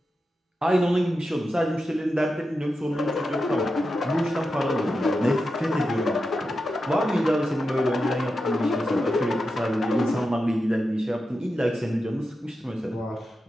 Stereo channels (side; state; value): both; normal; correlation 0.89